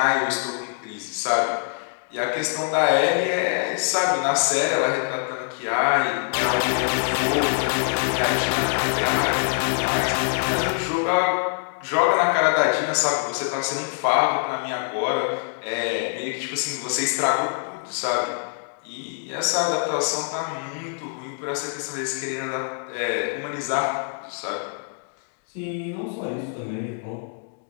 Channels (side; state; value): right; silent; digital silence